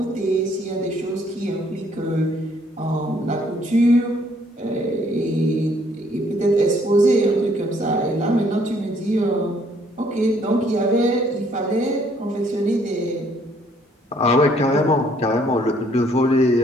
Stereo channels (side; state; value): both; normal; correlation 0.64